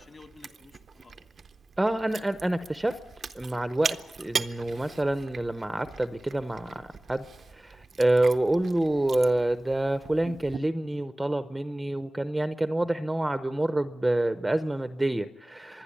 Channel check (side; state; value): both; normal; correlation 0.98